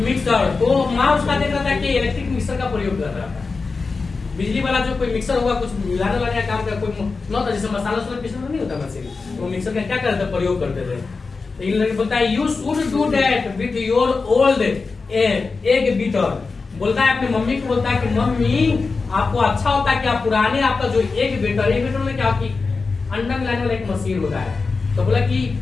तो माँ उसका देख रहा था कि इलेक्ट्रिक मिक्सर का प्रयोग कर रहा था। बिजली वाला जो कोई मिक्सर होगा, कुछ मिलाने वाला काम का कोई न होता, जैसे मसाला वसाला पीसना नहीं होता मशीन, वो मिक्सर का क्या करते? प्रयोग करते थे। तो इन लड़के बोलता है you should do that with your old egg beater. बोलता है अपनी मम्मी को, बोलता है कि मम्मी आपको अच्छा होता है कि आप पुराने आपका जो एग बीटर में क्या कि अंडा मिलाने वाला एक मशीन होता है। तो बोला कि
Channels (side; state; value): right; quieter; 4.3 dB